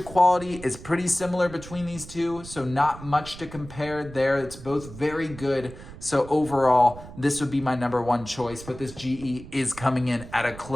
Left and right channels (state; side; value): noise; right; rumble, 15 dB below the sound